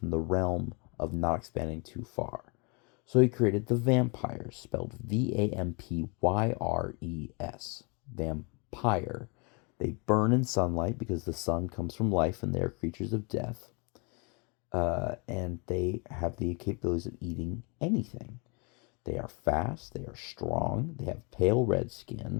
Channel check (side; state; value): right; quieter; 32.3 dB